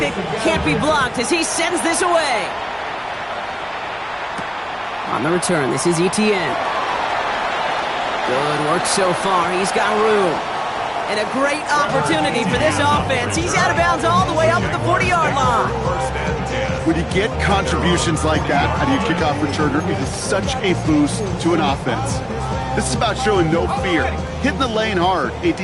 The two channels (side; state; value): both; identical; correlation 1.00